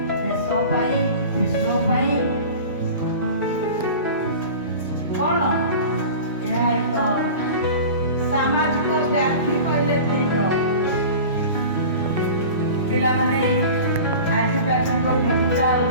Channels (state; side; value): inverted; both; correlation -0.36